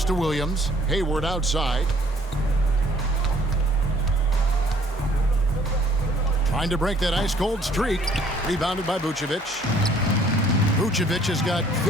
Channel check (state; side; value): normal; both; correlation 0.59